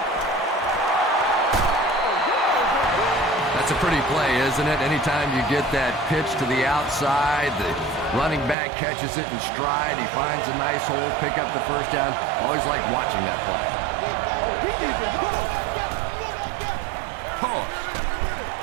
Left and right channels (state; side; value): drops out; left; at 8.6 s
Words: That's a pretty play, isn't it? Anytime you get that pitch to the outside, the running back catches it in stride, he finds a nice hole, pick up the first down. Always like watching that play. Toss.